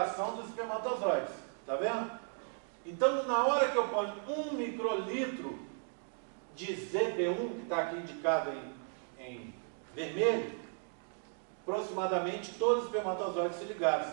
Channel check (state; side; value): silent; left; 54 dB below the other